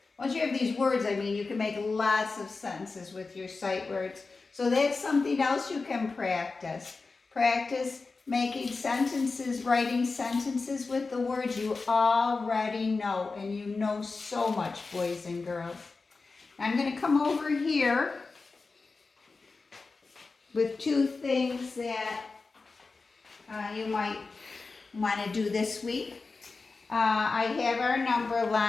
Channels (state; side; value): quieter; right; 4.0 dB